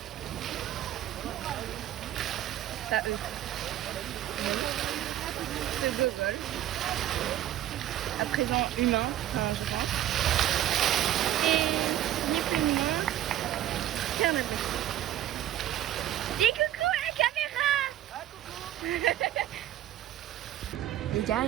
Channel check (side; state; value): left; quieter; 12.6 dB